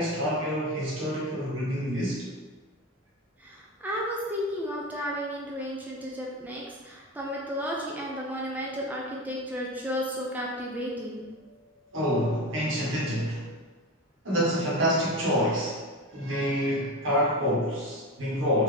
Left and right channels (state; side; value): normal; both; correlation 0.24